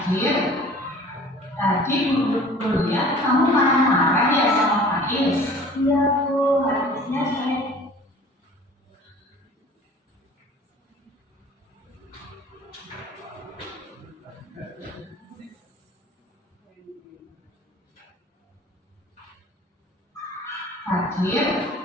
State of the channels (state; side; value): normal; both; correlation 0.47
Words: tadi Bu lihat kamu marah-marah ya sama Faiz. Iya Bu, habisnya saya Fadil,